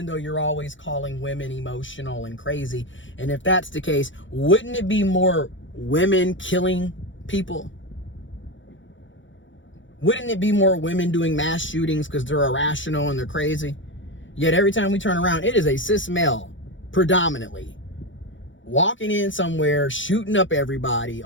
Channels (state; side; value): late; right; 0.56 ms